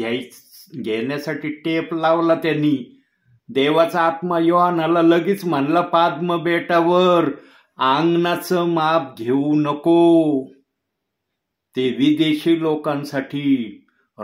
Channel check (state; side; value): identical; both; correlation 1.00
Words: घेण्यासाठी टेप लावला त्यांनी. देवाचा आत्मा योहानाला लगेच म्हणला, पाद्म बेटावर अंगणाचं माप घेऊ नको, ते विदेशी लोकांसाठी